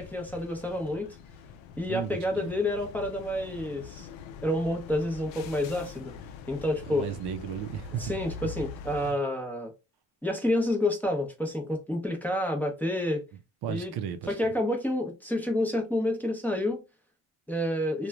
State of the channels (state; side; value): normal; both; correlation 0.71